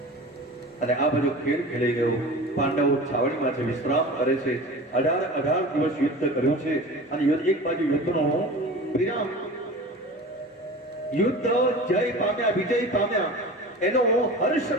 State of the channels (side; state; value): both; normal; correlation 0.35